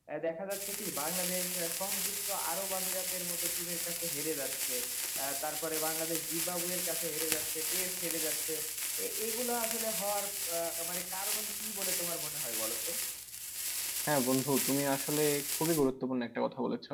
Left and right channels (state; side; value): identical; both; correlation 1.00